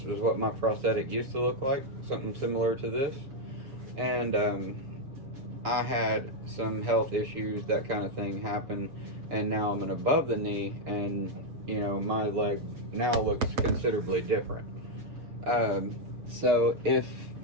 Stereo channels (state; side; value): late; left; 7.3 ms